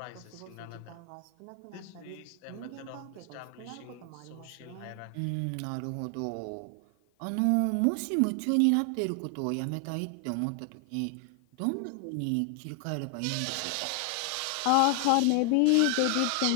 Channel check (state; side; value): different; both; correlation 0.00